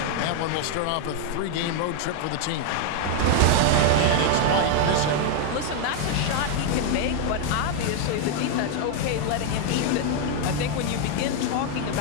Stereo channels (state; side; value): different; both; correlation 0.00